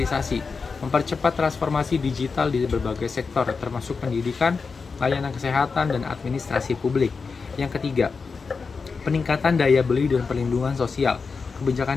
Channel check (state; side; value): quieter; right; 4.9 dB